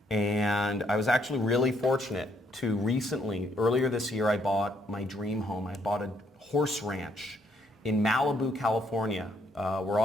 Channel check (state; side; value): normal; both; correlation 0.71